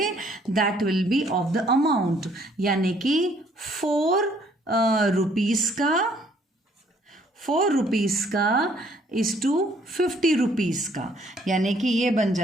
that will be of the amount, यानी कि 4 रुपीज़ का इज टू 50 रुपीज़ का, यानी कि ये बन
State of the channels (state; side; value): normal; both; correlation 0.63